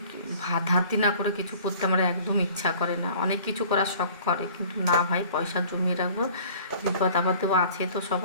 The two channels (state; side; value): inverted; both; correlation -0.49